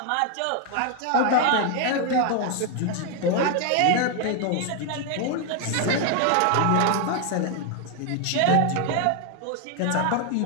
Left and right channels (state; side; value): different; both; correlation 0.00